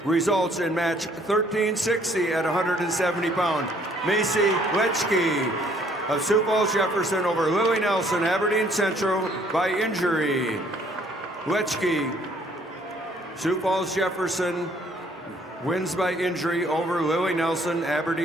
Results in match 1360 at 170 pounds. Macy Letchke of Sioux Falls Jefferson over Lily Nelson, Aberdeen Central by injury. Letchke, Sioux Falls Jefferson wins by injury over Lily Nelson,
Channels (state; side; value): normal; both; correlation 0.62